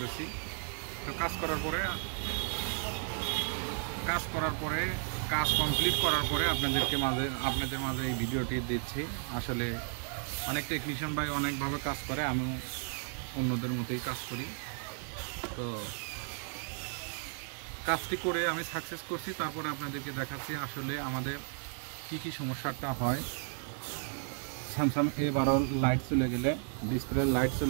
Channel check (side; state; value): left; silent; 55 dB below the other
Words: তো কাজ কমপ্লিট করার পরে আপনাদের মাঝে এই ভিডিওটি দিচ্ছি। আসলে অনেক টেকনিশিয়ান ভাই অনেকভাবে কাজ করে, আমিও অন্যদের মতোই কাজ করি। তো কাজটি করে আমি সাকসেস করছি, তারপরে আপনাদেরকে দেখাচ্ছি আসলে আমাদের কি সমস্যাটা হয়। স্যামসাং A12 লাইট চলে গেলে, ডিসপ্লে লাইট